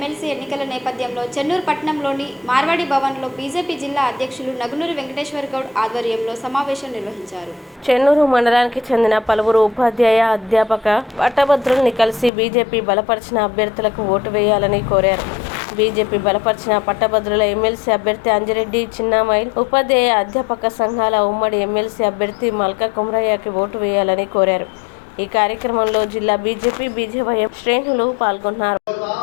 ఎన్నికల నేపథ్యంలో చెన్నూరు పట్టణంలోని మార్వాడి భవన్లో బీజేపీ జిల్లా అధ్యక్షులు నగునూరి వెంకటేశ్వర గౌడ్ ఆధ్వర్యంలో సమావేశం నిర్వహించారు. చెన్నూరు మండలానికి చెందిన పలువురు ఉపాధ్యాయ అధ్యాపక పట్టభద్రుల్ని కలిసి బీజేపీ బలపరిచిన అభ్యర్థులకు ఓటు వేయాలని కోరారు. బీజేపీ బలపరిచిన పట్టభద్రుల ఎమ్మెల్సీ అభ్యర్థి అంజిరెడ్డి చిన్నామైల్, ఉపాధ్యాయ అధ్యాపక సంఘాల ఉమ్మడి ఎమ్మెల్సీ అభ్యర్థి మల్కా కుమరయ్యకి ఓటు వేయాలని కోరారు. ఈ కార్యక్రమంలో జిల్లా బీజేపీ బీజేవైఎం శ్రేణులు పాల్గొన్నారు.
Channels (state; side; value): drops out; right; at 12.3 s